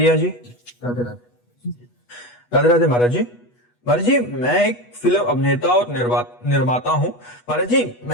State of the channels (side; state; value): right; late; 8.2 ms